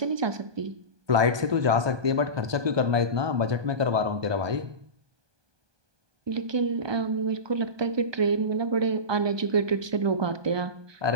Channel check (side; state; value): left; late; 1.2 ms